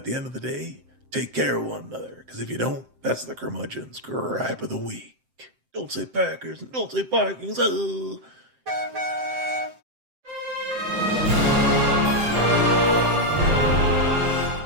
the end of the day, take care of one another. Because if you don't, that's the curmudgeon's gripe of the week. Don't say Packers and don't say Vikings. Oh.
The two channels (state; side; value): late; left; 7.7 ms